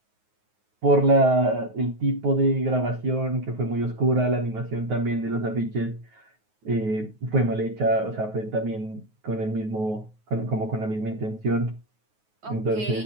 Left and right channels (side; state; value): left; late; 9.4 ms